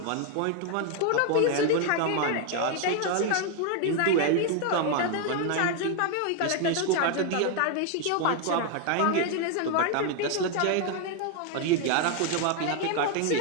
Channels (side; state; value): both; different; correlation 0.01